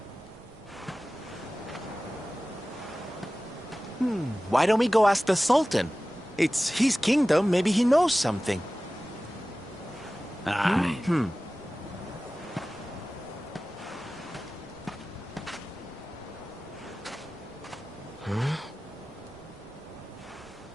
Why don't we go ask the Sultan? It's his kingdom, maybe he knows something. Aye.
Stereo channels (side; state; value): right; noise; rumble, 27 dB below the sound